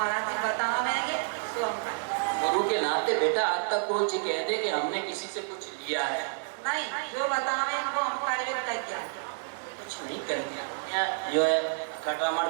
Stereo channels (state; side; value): silent; left; 58 dB below the other